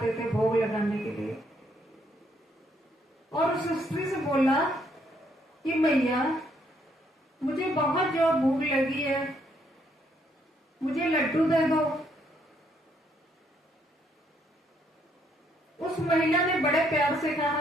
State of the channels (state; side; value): normal; both; correlation 0.71